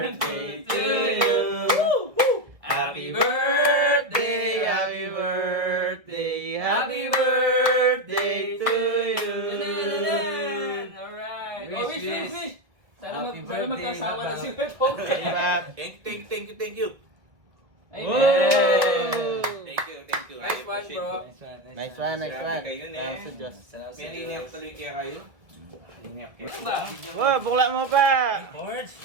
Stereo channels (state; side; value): late; left; 1.6 ms